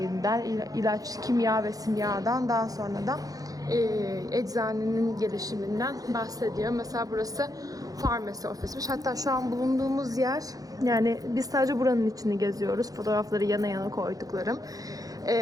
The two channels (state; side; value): late; left; 0.17 ms